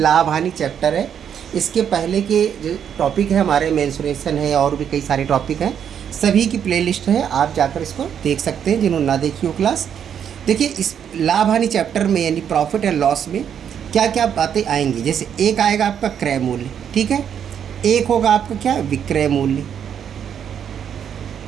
हानि चैप्टर है। इसके पहले के जो टॉपिक है हमारे मेंसुरेशन है और भी कई सारे टॉपिक हैं, सभी की प्लेलिस्ट है, आप जाकर इसको देख सकते हैं जिन्होंने ना देखी हो क्लास। देखिए, इस लाभ हानि चैप्टर में यानी प्रॉफिट एंड लॉस में क्या क्या बातें आएंगी। जैसे एक आएगा आपका क्रय मूल्य, ठीक है। एक होगा आपका क्या, विक्रय मूल्य।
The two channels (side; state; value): left; quieter; 8.5 dB